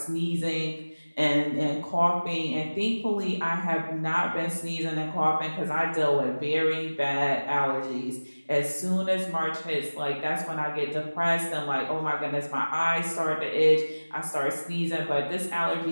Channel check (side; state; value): both; inverted; correlation -1.00